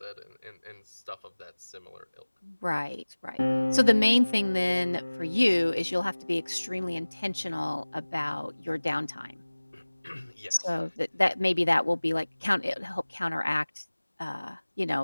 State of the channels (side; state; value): both; inverted; correlation -1.00